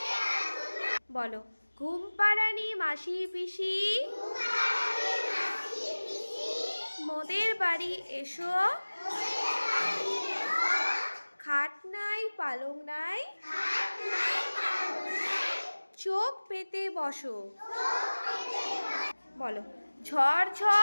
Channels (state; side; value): inverted; both; correlation -1.00